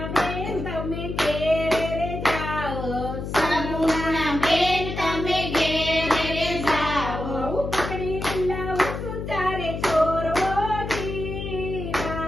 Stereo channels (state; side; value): noise; left; hum, 6 dB below the sound